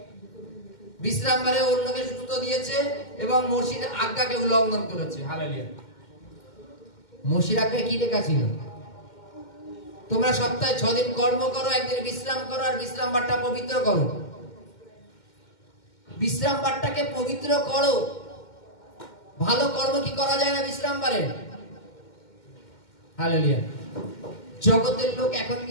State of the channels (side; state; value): right; late; 2.1 ms